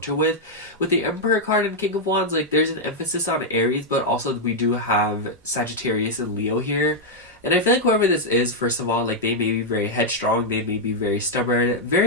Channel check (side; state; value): both; normal; correlation -0.03